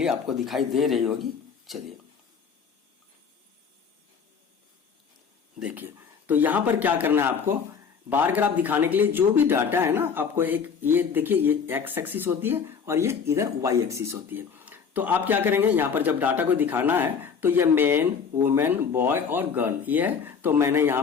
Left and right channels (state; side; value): quieter; right; 6.3 dB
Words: आपको दिखाई दे रही होगी। चलिए देखिए, तो यहां पर क्या करना है आपको, बार ग्राफ दिखाने के लिए जो भी डाटा है ना आपको एक ये देखिए ये एक्स एक्सिस होती है और ये इधर वाई एक्सिस होती है। तो आप क्या करेंगे, यहाँ पर जब डाटा को दिखाना है तो ये मैन, वुमेन, बॉय और गर्ल ये है, तो मैंने यहाँ